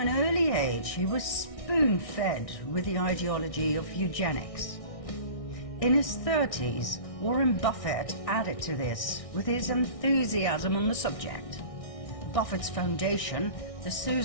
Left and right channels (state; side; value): late; right; 1.6 ms